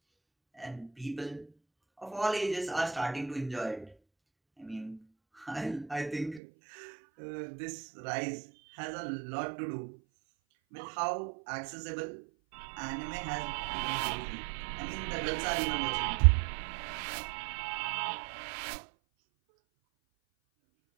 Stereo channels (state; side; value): drops out; left; at 6.4 s